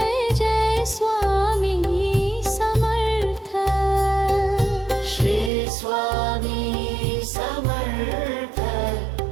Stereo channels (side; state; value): left; drops out; at 5.5 s